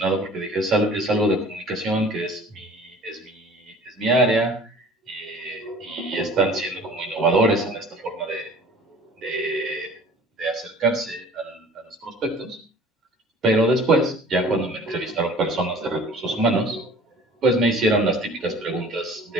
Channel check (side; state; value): both; normal; correlation 0.47